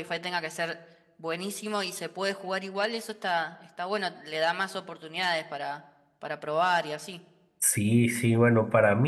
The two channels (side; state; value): both; identical; correlation 1.00